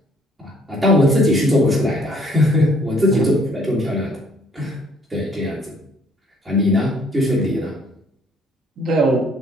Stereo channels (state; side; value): normal; both; correlation 0.62